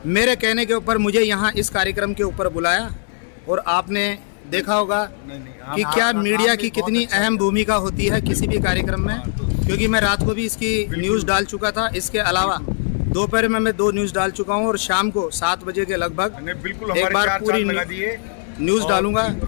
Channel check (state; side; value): silent; right; digital silence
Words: मेरे कहने के ऊपर मुझे यहाँ इस कार्यक्रम के ऊपर बुलाया, और आपने देखा होगा कि क्या मीडिया की कितनी अहम भूमिका होती है किसी भी कार्यक्रम में, क्योंकि मैं रात को भी इसकी न्यूज़ डाल चुका था। इसके अलावा दोपहर में मैं 2 न्यूज़ डाल चुका हूँ और शाम को 7 बजे के लगभग बिल्कुल एक बार पूरी न्यूज़ डालूंगा,